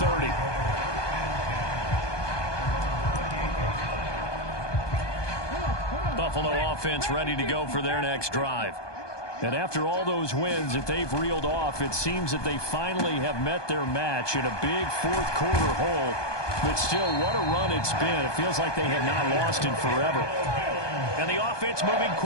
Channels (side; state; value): right; late; 1.2 ms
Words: Buffalo offense ready to go for their next drive. And after all those wins that they've reeled off, it seems that they finally have met their match in a big fourth-quarter hole. But still, what a run it's been. It feels like they have not lost in forever. And the offense moving